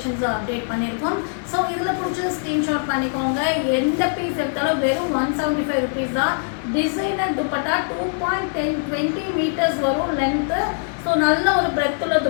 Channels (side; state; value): right; silent; digital silence